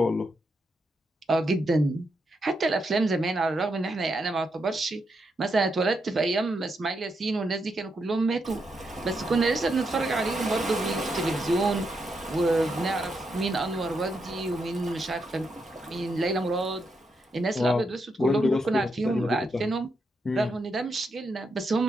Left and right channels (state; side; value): normal; both; correlation 0.82